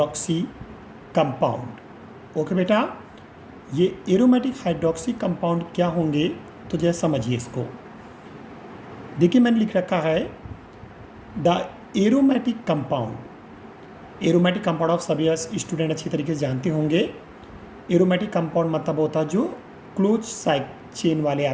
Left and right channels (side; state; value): both; identical; correlation 1.00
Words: कंपाउंड। ओके बेटा, ये एरोमेटिक हाइड्रोक्सी कंपाउंड क्या होंगे तो जरा समझिए इसको। देखिए मैंने लिख रखा है द एरोमेटिक कंपाउंड ऑफ सभी स्टूडेंट अच्छी तरीके से जानते होंगे। एरोमेटिक कंपाउंड मतलब होता है जो क्लोज साइड चेन वाले